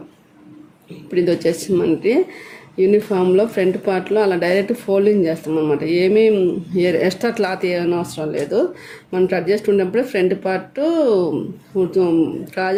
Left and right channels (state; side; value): identical; both; correlation 1.00